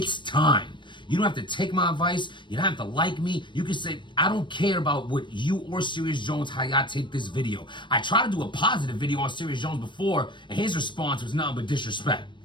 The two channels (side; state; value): right; late; 0.23 ms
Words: time. You don't have to take my advice. You don't have to like me. You can say, I don't care about what you or Serious Jones, how y'all take this video. I tried to do a positive video on Serious Jones before, and his response was nothing but disrespect.